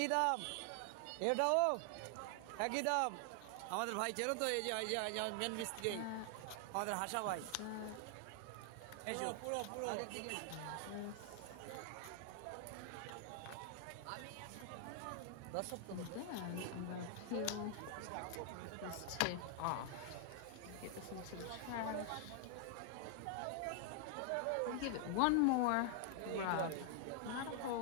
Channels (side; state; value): both; different; correlation 0.00